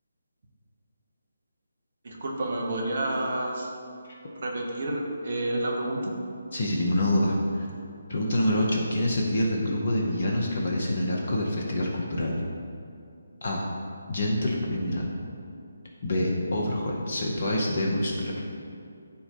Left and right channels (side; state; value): both; inverted; correlation -0.82